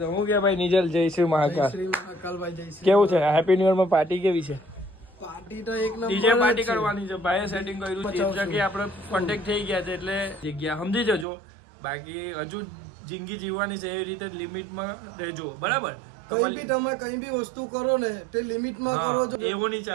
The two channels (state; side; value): drops out; left; at 11.2 s